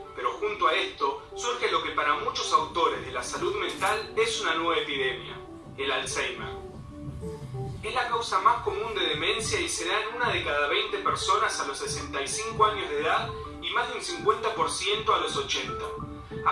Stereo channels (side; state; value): both; identical; correlation 1.00